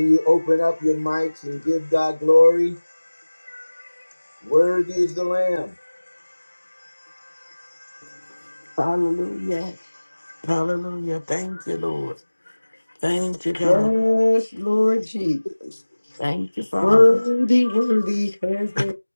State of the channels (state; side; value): inverted; both; correlation -1.00